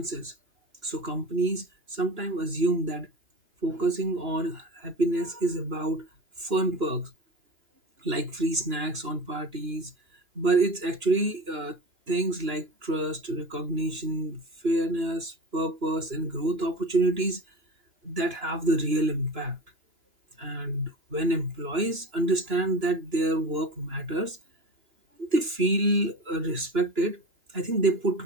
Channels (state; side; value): late; left; 2.9 ms